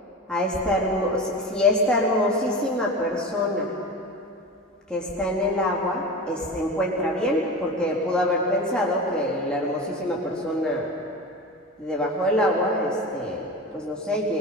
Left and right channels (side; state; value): both; normal; correlation 0.29